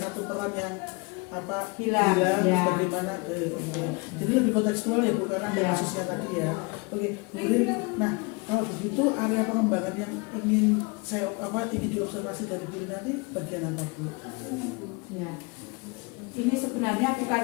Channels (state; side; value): quieter; right; 28.9 dB